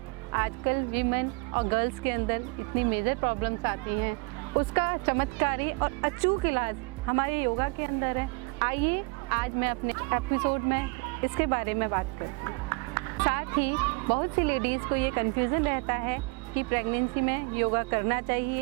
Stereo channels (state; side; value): quieter; left; 29.8 dB